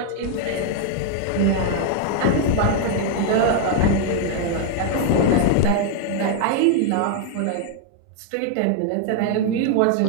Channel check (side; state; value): both; different; correlation 0.00